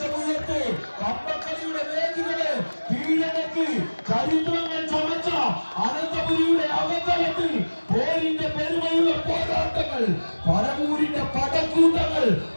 കമ്പക്കളിയുടെ വേദികളെ കീഴടക്കി ചരിത്രങ്ങൾ ചമച്ച അനന്തപുരിയുടെ അവതലത്തിൽ പോരിന്റെ പെരുമയുള്ള പോരാട്ടങ്ങൾ പരമൂരിന്റെ പടക്കൂട്ടങ്ങൾ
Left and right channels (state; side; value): inverted; both; correlation -1.00